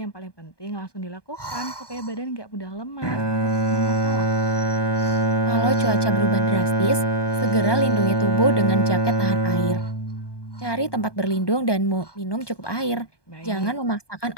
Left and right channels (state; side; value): late; right; 1.2 ms